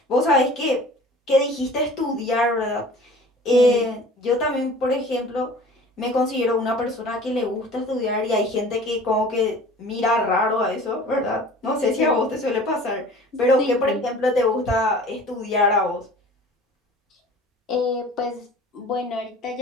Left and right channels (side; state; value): both; normal; correlation 0.44